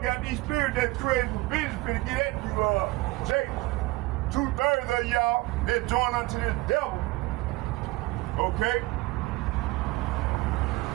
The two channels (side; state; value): left; quieter; 21.2 dB